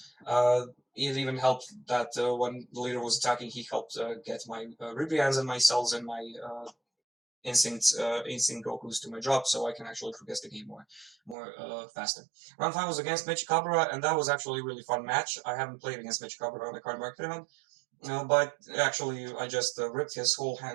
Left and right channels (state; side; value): drops out; left; at 11.4 s